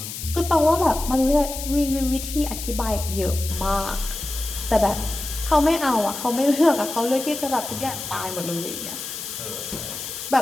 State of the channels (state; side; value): noise; left; hiss, 8 dB below the sound